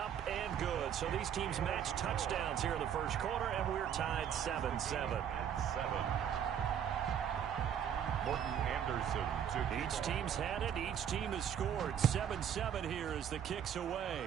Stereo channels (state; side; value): quieter; left; 9.0 dB